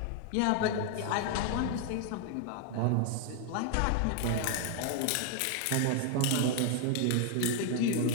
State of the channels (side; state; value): both; different; correlation 0.00